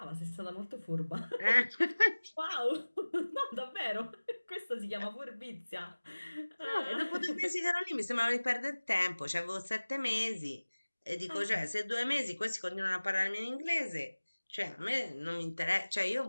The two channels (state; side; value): inverted; both; correlation -1.00